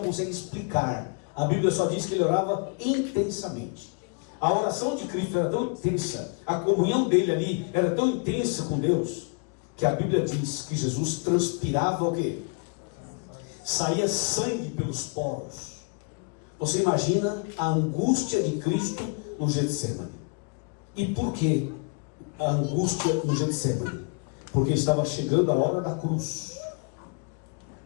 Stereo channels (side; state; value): right; quieter; 38.0 dB